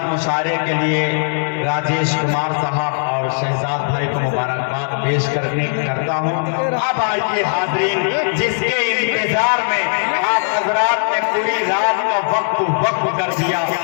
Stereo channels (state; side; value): silent; right; digital silence